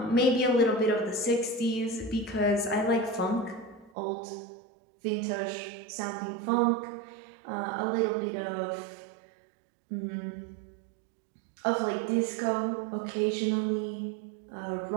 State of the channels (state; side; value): drops out; left; at 3.9 s